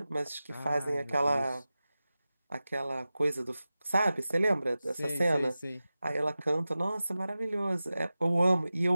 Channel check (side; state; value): both; inverted; correlation -0.95